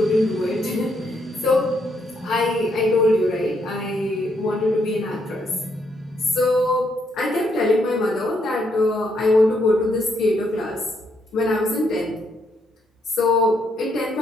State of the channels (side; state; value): both; normal; correlation 0.75